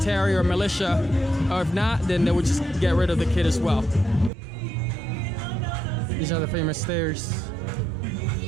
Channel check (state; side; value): drops out; left; at 4.3 s